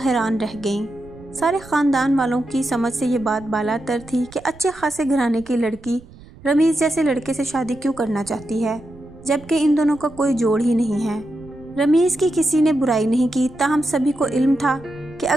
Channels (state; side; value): noise; right; rumble, 21 dB below the sound